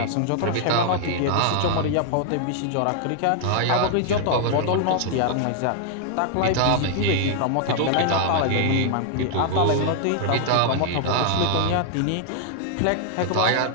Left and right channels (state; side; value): different; both; correlation -0.01